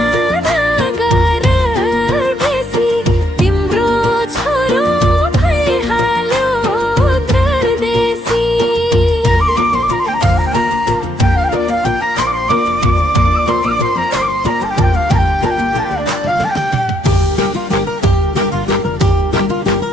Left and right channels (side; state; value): both; normal; correlation 0.75